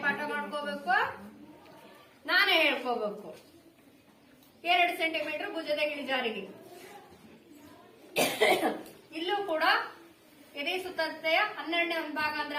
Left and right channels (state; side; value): identical; both; correlation 1.00